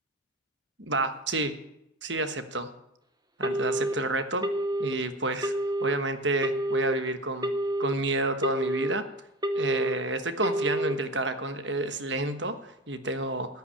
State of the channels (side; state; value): both; normal; correlation 0.30